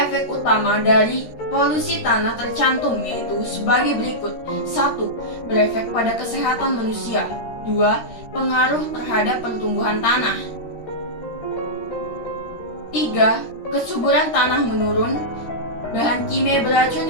efek utama dari polusi tanah tercantum, yaitu sebagai berikut. 1. Berefek pada kesehatan manusia. 2. Pengaruh terhadap pertumbuhan tanah. 3. Kesuburan tanah menurun. Bahan kimia beracun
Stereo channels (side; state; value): right; late; 13 ms